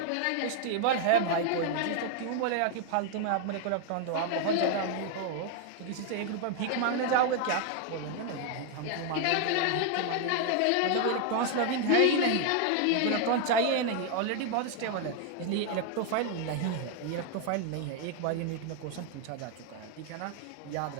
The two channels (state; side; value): different; both; correlation 0.00